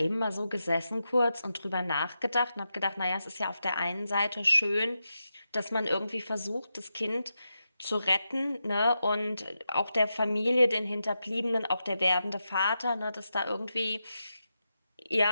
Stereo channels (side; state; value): both; inverted; correlation -0.88